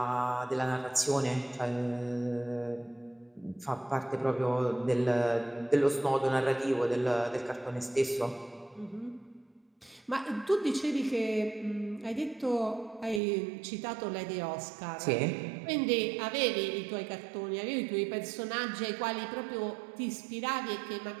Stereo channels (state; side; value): drops out; left; at 13.2 s